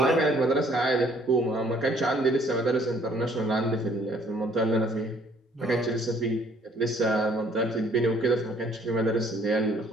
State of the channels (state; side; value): normal; both; correlation 0.60